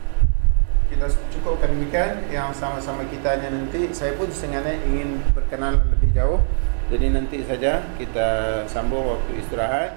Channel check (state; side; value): silent; left; digital silence